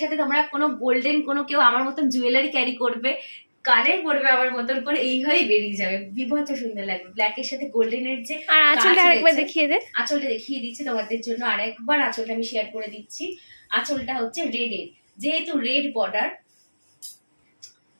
সাথে তোমরা কোনো গোল্ডেন কোনো কেউ আমার মতন জুয়েলারি ক্যারি করবে, কানে পড়বে আমার মতন করে, এই হয়েই বেরিয়ে যাবে, বিভৎস সুন্দর লাগবে। ব্ল্যাকের সাথে গোল্ডেনের যে আঁচলটা আরেকবার দেখিয়ে দে। আঁচলটা দেখিয়ে দিচ্ছি তোমাদের জন্য আরেকবার, আঁচলটা আমি শেয়ার করে দিচ্ছি। আঁচলটা হচ্ছে রেডের, যেহেতু রেড বর্ডার।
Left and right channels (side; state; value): both; inverted; correlation -1.00